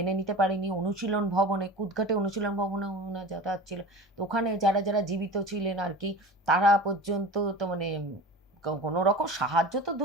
নিতে পারেনি। অনুশীলন ভবনে, কুদঘাটে অনুশীলন ভবনে ওনার যাতায়াত ছিল। তো ওখানে যারা যারা জীবিত ছিলেন আর কি, তারা পর্যন্ত তো মানে কোনো রকম সাহায্য তো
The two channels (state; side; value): normal; both; correlation 0.34